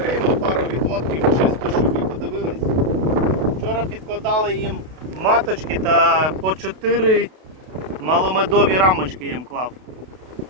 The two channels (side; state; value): left; late; 32 ms